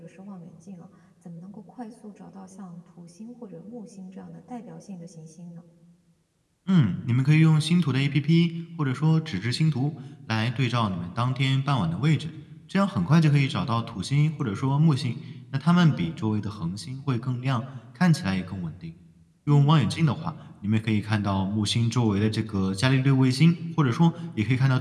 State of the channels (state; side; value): identical; both; correlation 1.00